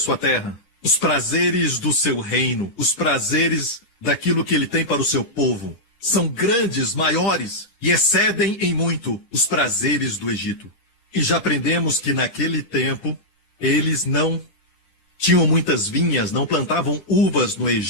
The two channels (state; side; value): late; right; 10 ms